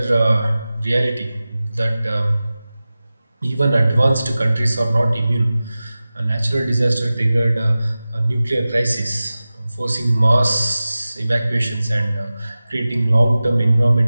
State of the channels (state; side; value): inverted; both; correlation -0.96